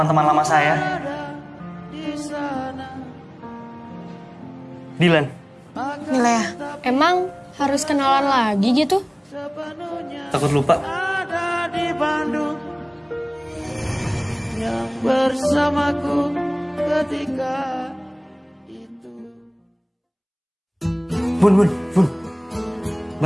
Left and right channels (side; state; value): both; identical; correlation 1.00